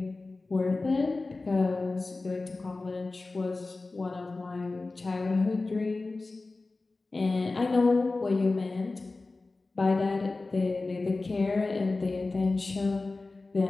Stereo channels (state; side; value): quieter; right; 3.4 dB